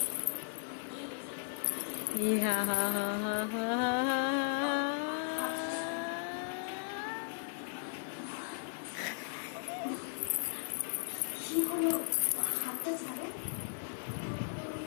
হা হা হা হা হা।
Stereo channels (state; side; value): silent; right; 53 dB below the other